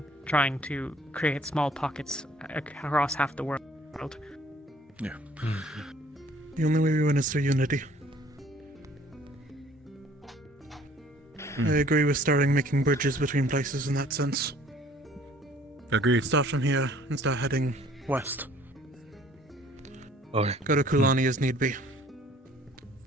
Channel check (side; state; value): both; normal; correlation 0.56